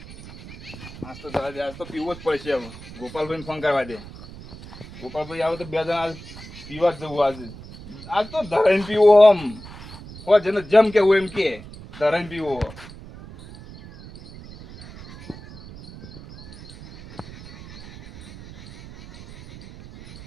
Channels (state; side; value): noise; right; rumble, 16 dB below the sound